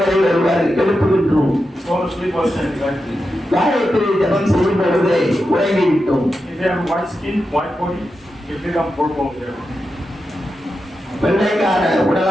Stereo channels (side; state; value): both; normal; correlation 0.89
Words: ஒருவர் எழுப்புகின்றோம். Fall asleep while chanting Gayatri. Gayatri ஜெபம் செய்யும் பொழுது உறங்கிவிட்டோம். If you have white skin, white body, you become purple there. வெள்ளைக்கார